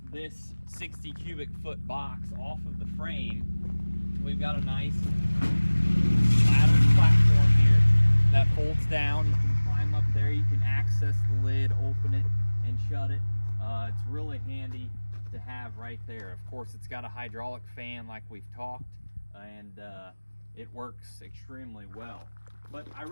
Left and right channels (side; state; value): both; inverted; correlation -1.00